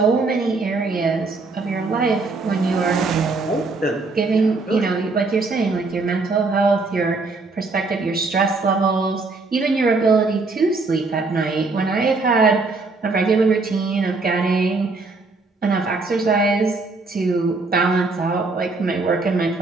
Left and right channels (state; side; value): quieter; left; 3.7 dB